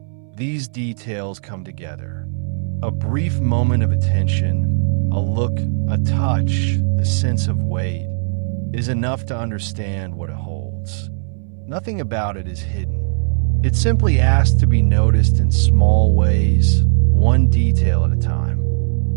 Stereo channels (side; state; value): left; silent; 64 dB below the other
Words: these details come together. A brief moment of attention, a look, a touch, a sense of weight, is enough to understand what it holds. Nothing about it is hidden. It simply asks to be noticed in small ways, one detail at a time.